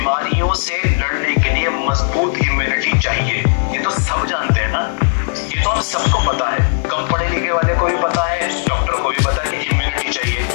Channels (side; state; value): right; silent; 58 dB below the other